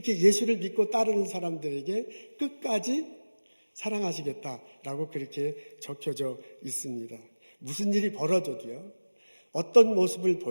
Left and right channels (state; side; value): inverted; both; correlation -1.00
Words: 예수를 믿고 따르는 사람들에게 끝까지 사랑하시겠다라고 그렇게 적혀져 있습니다. 무슨 일이 벌어져도요, 어떤 모습을